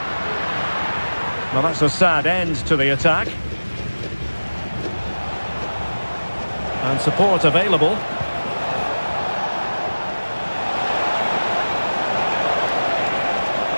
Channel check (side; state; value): both; inverted; correlation -1.00